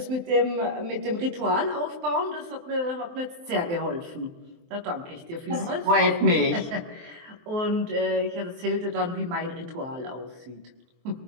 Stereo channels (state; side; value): late; left; 23 ms